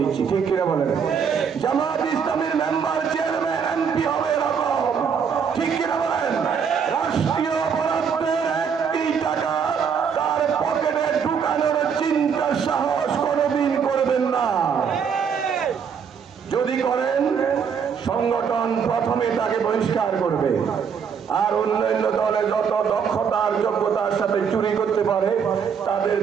ঠিক কিনা বলেন? জামাত ইসলামীর মেম্বার, চেয়ারম্যান, এমপি হবে এরকম, ঠিক কিনা বলেন? রাষ্ট্রীয় বরাদ্দের একটি টাকা তার পকেটে ঢুকানোর চিন্তা সাহস কোনোদিন করবেন না। যদি করেন সংগঠন প্রথমে তাকে বহিষ্কার করবে। আর অন্যান্য দলে যত দক্ষতার যোগ্যতার সাথে চুরি করতে পারে তাদের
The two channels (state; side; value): quieter; left; 6.8 dB